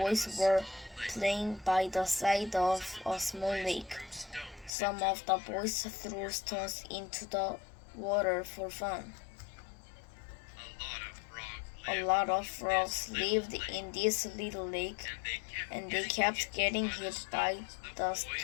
One day, a group of boys were playing by the side of a small lake. Some of the boys threw stones into the water for fun. A lot of frogs lived in this little lake, and they kept getting hit by the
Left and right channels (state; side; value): drops out; right; at 4.7 s